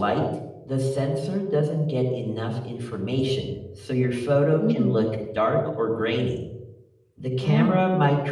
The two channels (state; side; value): identical; both; correlation 1.00